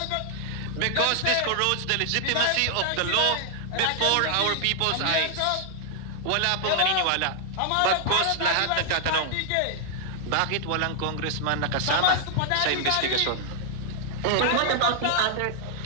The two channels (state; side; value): different; both; correlation 0.00